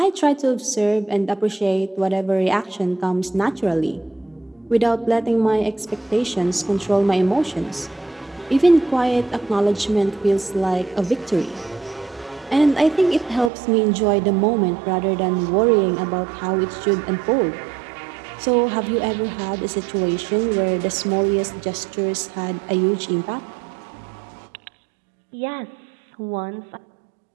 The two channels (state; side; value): drops out; left; at 13.5 s